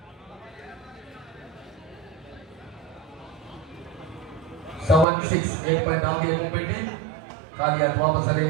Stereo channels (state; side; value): drops out; left; at 5.1 s